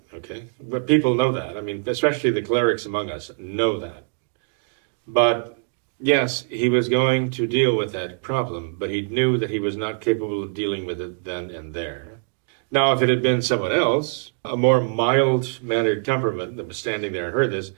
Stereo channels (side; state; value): left; silent; 63 dB below the other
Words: okay? But people know that. I mean, especially the clerics among us know that. But yes, he was going to deal with that problem, but he knew that he was not capable of dealing with it then and there. Now, if it had been someone else, a more mild-mannered temperament that was standing there and heard this,